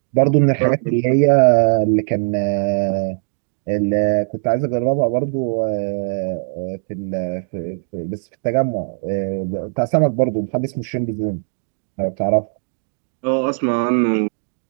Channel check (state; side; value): silent; left; 66 dB below the other